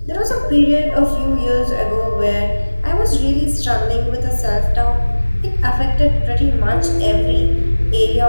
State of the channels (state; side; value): inverted; both; correlation -1.00